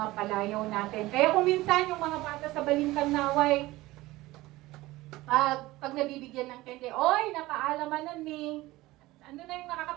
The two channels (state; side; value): quieter; left; 18.6 dB